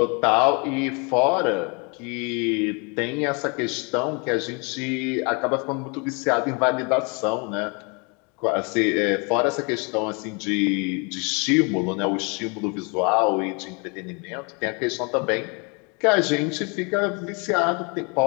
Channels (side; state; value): right; quieter; 32.4 dB